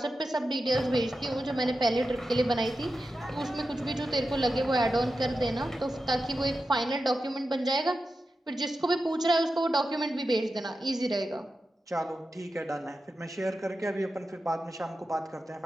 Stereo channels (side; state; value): both; normal; correlation 0.91